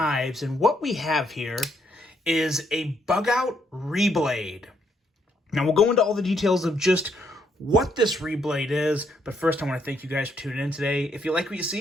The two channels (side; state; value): both; normal; correlation 0.73